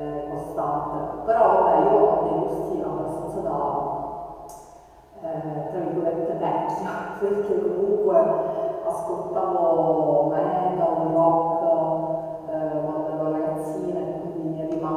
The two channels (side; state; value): both; identical; correlation 1.00